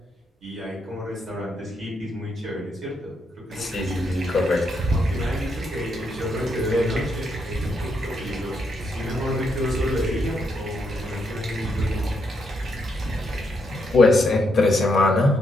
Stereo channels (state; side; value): normal; both; correlation 0.78